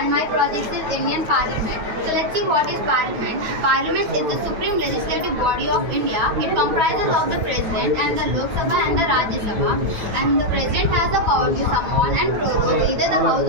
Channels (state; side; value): late; left; 9.3 ms